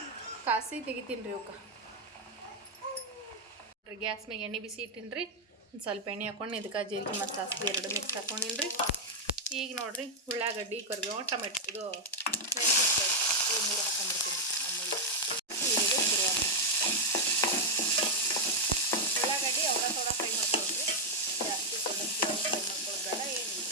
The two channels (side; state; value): both; normal; correlation 0.00